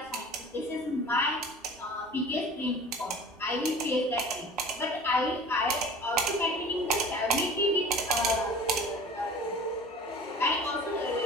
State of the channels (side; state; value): both; normal; correlation 0.42